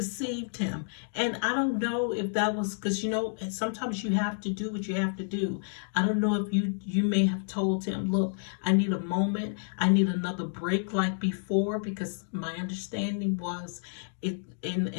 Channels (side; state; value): right; silent; digital silence